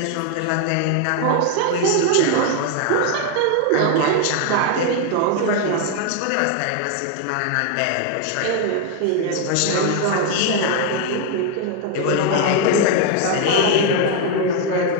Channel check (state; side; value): different; both; correlation 0.01